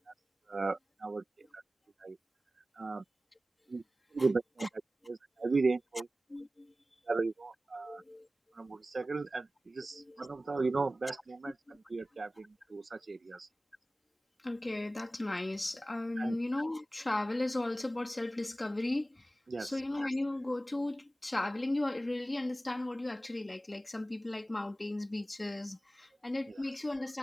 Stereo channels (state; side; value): normal; both; correlation 0.96